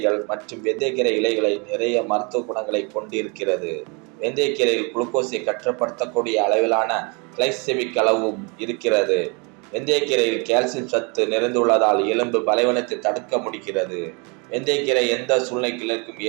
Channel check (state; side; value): quieter; left; 31.6 dB